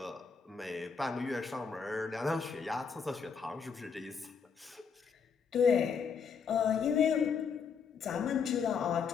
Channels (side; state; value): right; quieter; 6.1 dB